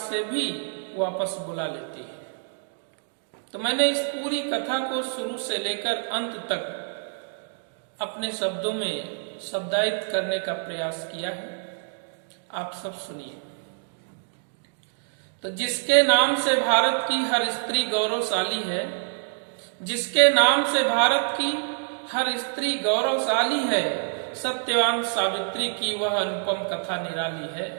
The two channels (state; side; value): silent; left; digital silence